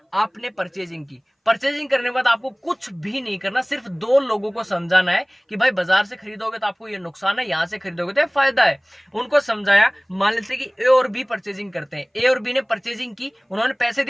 आपने परचेजिंग की। परचेजिंग करने के बाद आपको कुछ भी नहीं करना, सिर्फ 2 लोगों को समझाना है कि भाई बाजार से खरीदोगे तो आपको ये नुकसान है, यहाँ से खरीदोगे तो ये फायदा है। उनको समझाया। मान लेते कि ए और बी परचेजिंग करते हैं, ए और बी ने परचेजिंग की, उन्होंने पैसे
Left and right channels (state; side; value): identical; both; correlation 1.00